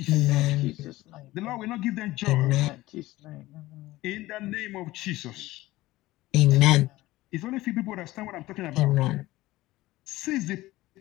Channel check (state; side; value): quieter; right; 17.7 dB